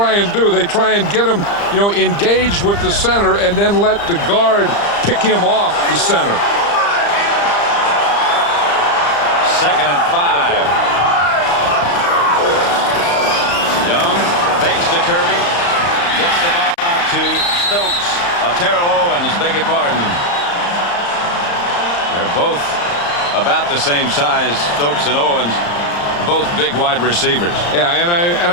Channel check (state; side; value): late; right; 35 ms